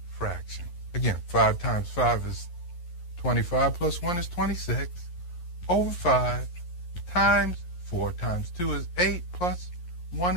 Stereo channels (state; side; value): late; right; 11 ms